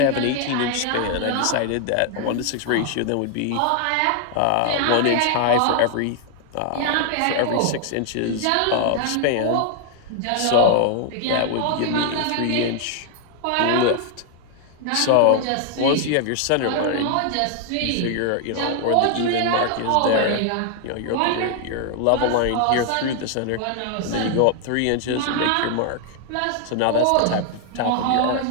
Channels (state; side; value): different; both; correlation 0.00